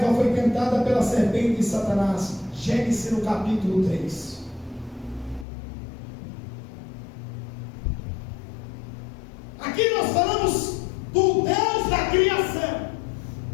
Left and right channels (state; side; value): drops out; right; at 5.5 s